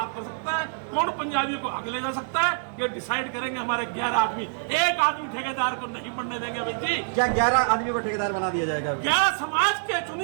कर सकता है, कौन पंजाबियों को आगे ले जा सकता है, ये डिसाइड करेंगे हमारे 11 आदमी। एक आदमी ठेकेदार को नहीं बनने देंगे भाई जी। क्या 11 आदमियों को ठेकेदार बना दिया जाएगा? 11 समाज के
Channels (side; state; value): left; silent; digital silence